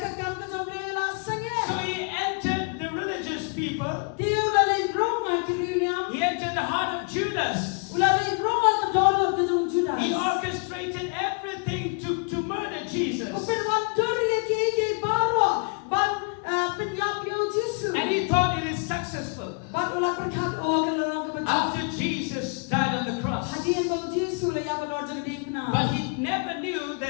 So he entered the religious people. He entered the heart of Judas. He orchestrated everything never knew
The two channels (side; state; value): right; quieter; 37.7 dB